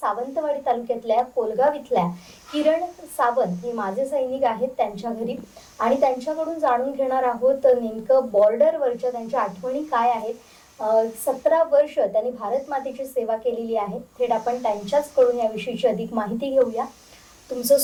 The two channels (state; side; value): identical; both; correlation 1.00